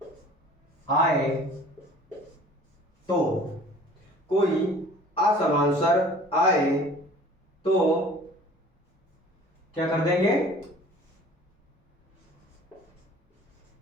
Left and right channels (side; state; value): both; normal; correlation 0.48